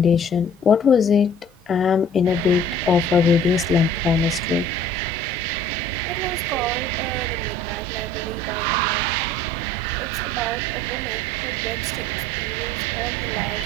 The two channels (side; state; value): both; normal; correlation 0.52